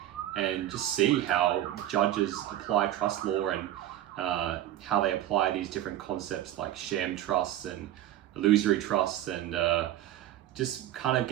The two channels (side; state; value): left; quieter; 13.2 dB